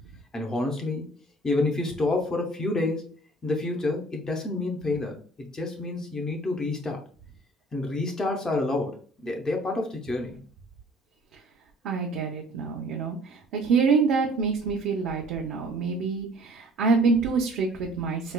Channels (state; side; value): normal; both; correlation 0.53